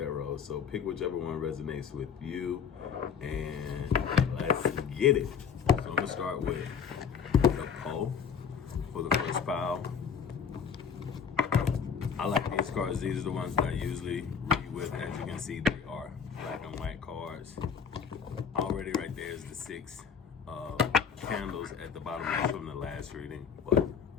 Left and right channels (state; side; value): quieter; right; 7.0 dB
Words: So pick whichever one resonates with you, and let's get it. So I'm gonna start with the Poe for the first pile. I like these cards. These are the ones that I usually read with. As you can see, they are black and white cards. Already right there is the 6 candles at the bottom. That's from the last reading, but